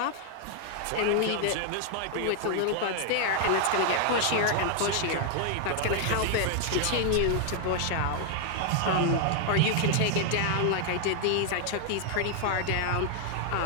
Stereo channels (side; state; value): both; different; correlation 0.00